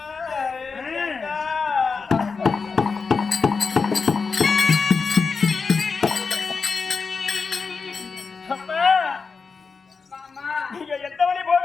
நீங்க எந்த வழி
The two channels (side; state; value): right; quieter; 4.9 dB